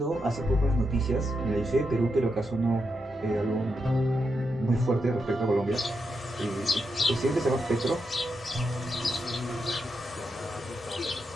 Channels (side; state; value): both; normal; correlation 0.84